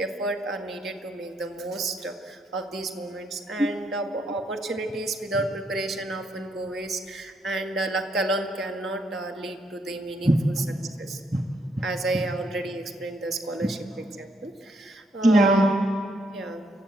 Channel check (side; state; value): both; normal; correlation 0.74